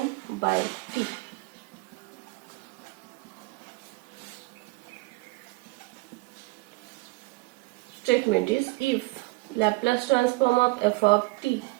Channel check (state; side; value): quieter; left; 24.5 dB